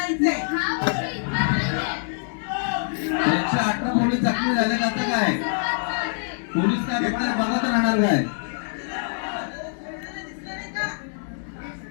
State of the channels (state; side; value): silent; right; digital silence